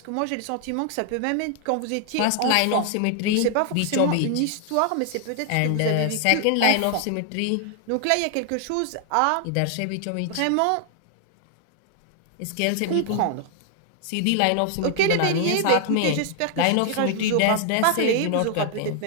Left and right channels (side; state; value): both; different; correlation 0.00